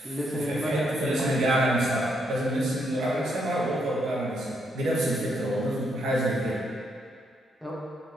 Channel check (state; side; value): normal; both; correlation 0.76